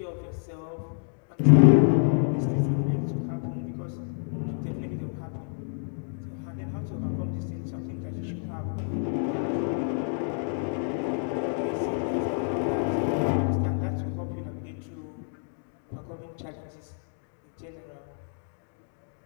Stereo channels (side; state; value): right; silent; 59 dB below the other